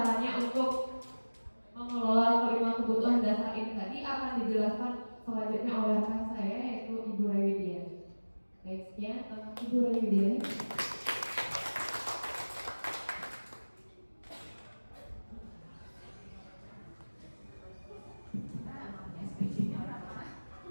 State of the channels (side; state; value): both; inverted; correlation -1.00